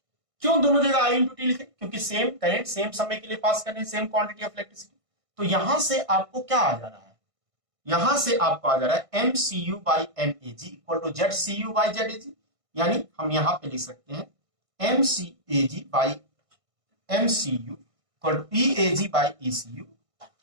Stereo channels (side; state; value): left; late; 1.6 ms